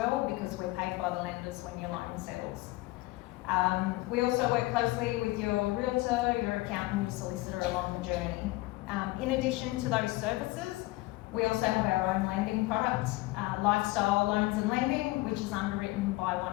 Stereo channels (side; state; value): right; quieter; 20.4 dB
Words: because we're paid by the lenders when your loan settles. We also work closely with your realtor, your accountant, your solicitor along the journey. In addition to those services, we also have our own lending product, Lifestyle Loans and Lending, which is underwritten by